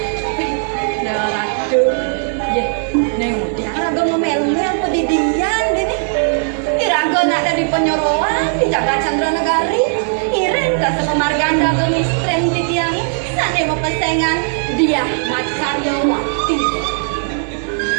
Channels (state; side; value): silent; left; digital silence